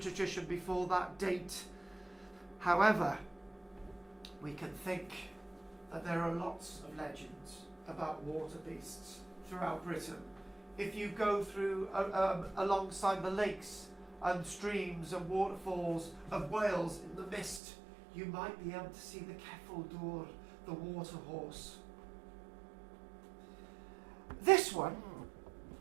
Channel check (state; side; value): drops out; left; at 17.6 s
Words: before that date. However, we can think that there are lots of legends about water beasts throughout Britain. If you go through alongside the lakes and streams and waterfalls of Wales in the mist, you might be able to see the Ceffyl Dŵr, the water horse. This one